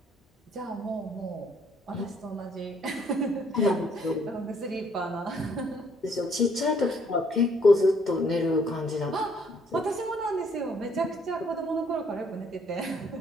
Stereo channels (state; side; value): normal; both; correlation 0.65